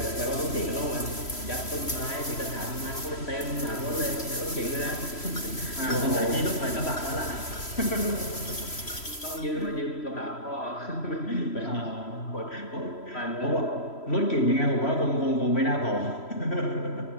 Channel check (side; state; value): right; late; 3.1 ms